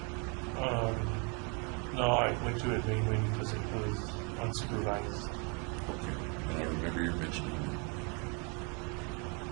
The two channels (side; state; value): left; quieter; 34.3 dB